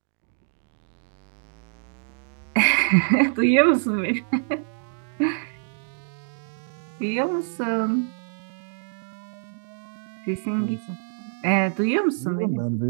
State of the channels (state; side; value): silent; left; digital silence